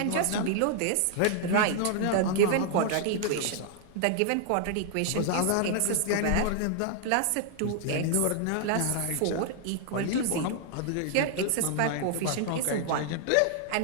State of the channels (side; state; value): both; different; correlation 0.00